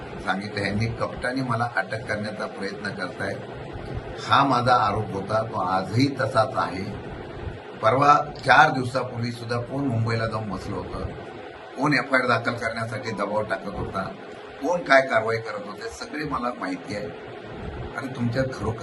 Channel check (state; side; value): identical; both; correlation 1.00